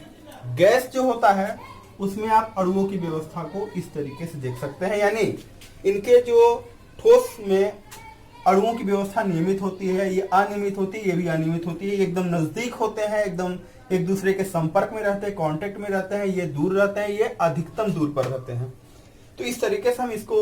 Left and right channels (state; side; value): identical; both; correlation 1.00